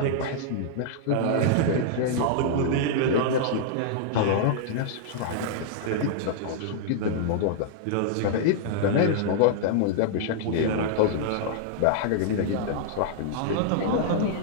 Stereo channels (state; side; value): different; both; correlation -0.01